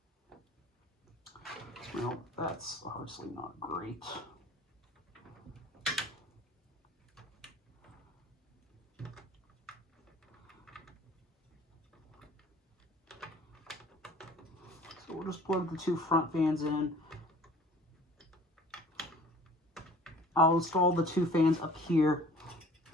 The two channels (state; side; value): normal; both; correlation 0.49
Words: Well, that's obviously not great. So we'll just plug the two front fans in. I'll install the two fans up here.